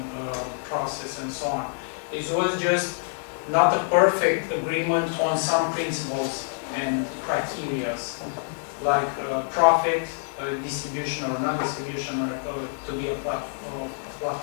process and so on. It was just not a perfect agreement on some principles and criteria like profit distribution or non-distribution or to be a platform.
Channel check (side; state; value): right; silent; digital silence